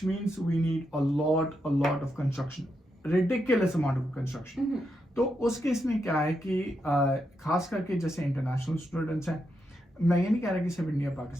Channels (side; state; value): both; normal; correlation 0.83